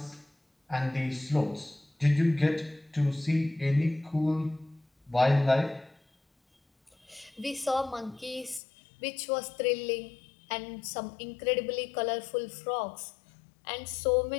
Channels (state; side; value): drops out; right; at 8.6 s